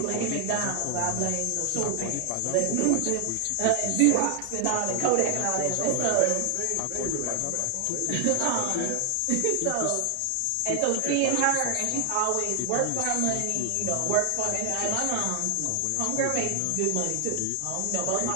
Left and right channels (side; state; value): both; different; correlation 0.00